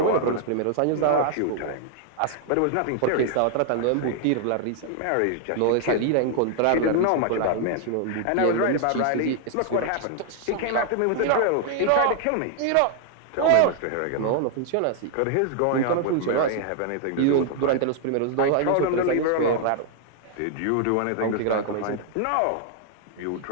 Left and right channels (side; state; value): both; different; correlation 0.00